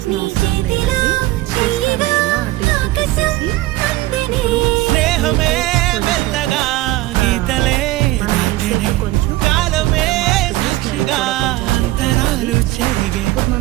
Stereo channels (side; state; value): left; quieter; 17.4 dB